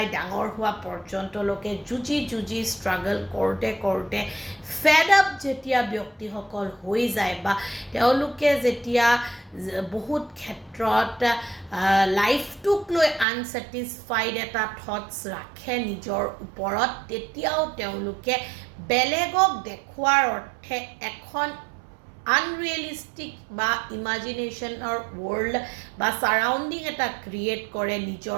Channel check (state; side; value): drops out; left; at 13.2 s